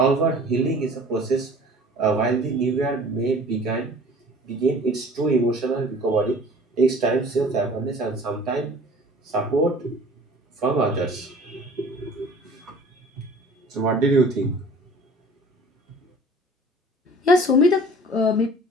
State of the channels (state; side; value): normal; both; correlation 0.46